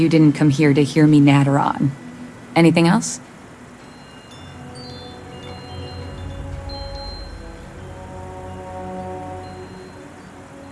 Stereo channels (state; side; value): identical; both; correlation 1.00